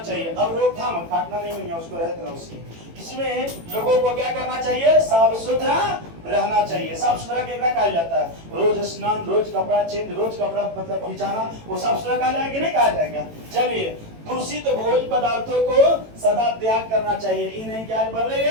अब रोकथाम काटना नहीं है, उसको रहते उसकी। इसमें लोगों को क्या करना चाहिए? साफ सुथरा रहना चाहिए। साफ सुथरा क्या कहा जाता है? रोज स्नान, रोज कपड़ा चेंज, रोज कपड़ा मतलब खिंचाना, वो साफ सुथरा कहा जाएगा कि नहीं कहा जाएगा? चलिए, दूषित भोज्य पदार्थों को सदा त्याग करना चाहिए। ये नहीं क्या बन रही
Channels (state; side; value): late; left; 18 ms